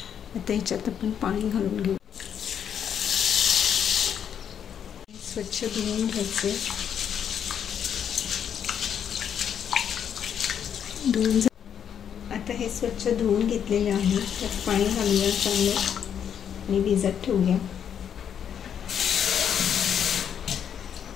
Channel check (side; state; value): right; quieter; 8.4 dB